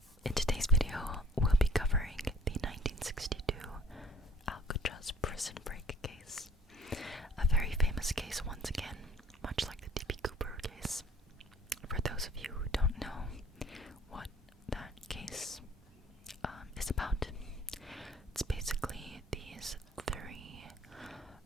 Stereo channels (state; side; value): normal; both; correlation 0.53